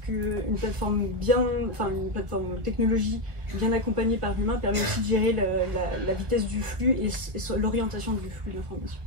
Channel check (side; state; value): left; late; 1.2 ms